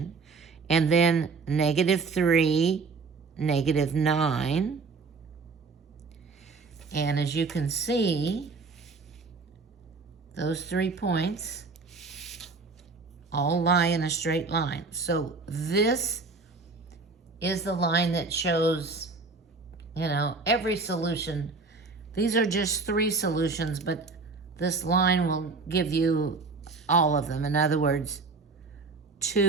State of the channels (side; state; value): left; quieter; 4.3 dB